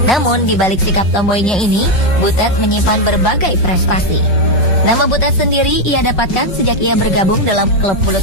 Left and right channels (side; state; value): right; late; 5.5 ms